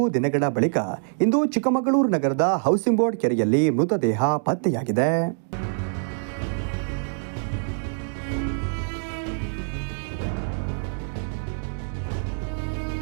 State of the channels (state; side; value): silent; left; digital silence